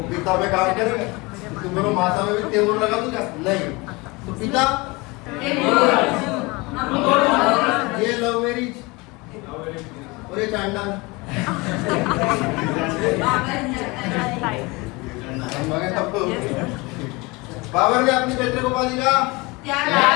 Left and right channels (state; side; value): quieter; right; 24.7 dB